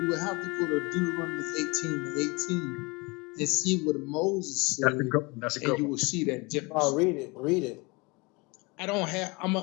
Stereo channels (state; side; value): quieter; right; 26.8 dB